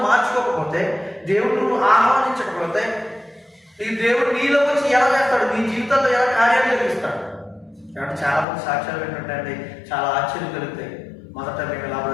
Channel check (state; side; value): drops out; right; at 8.5 s